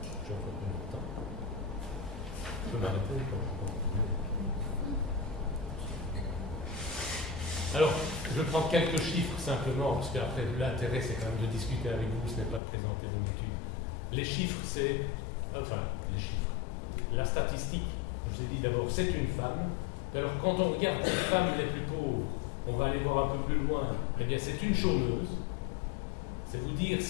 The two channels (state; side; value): drops out; right; at 12.6 s